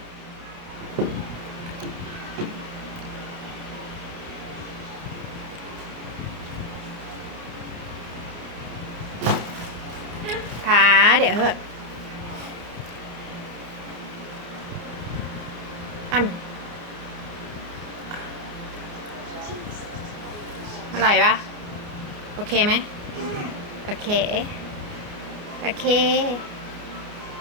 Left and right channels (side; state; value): left; late; 29 ms